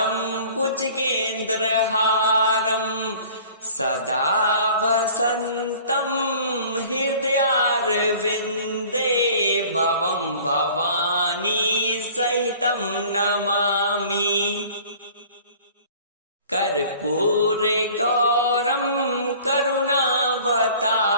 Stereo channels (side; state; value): both; inverted; correlation -0.48